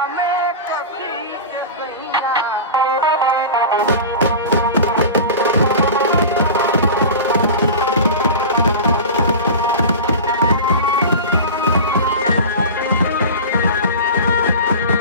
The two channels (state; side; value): inverted; both; correlation -0.31